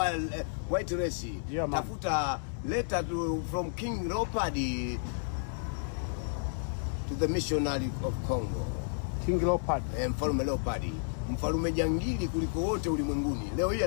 white race, tafuta letter from King Leopold to the missionary of Congo. King Leopold. Mfalme Leopold. Mfalme jangili kuliko wote ulimwenguni. Leo hii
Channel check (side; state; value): right; silent; digital silence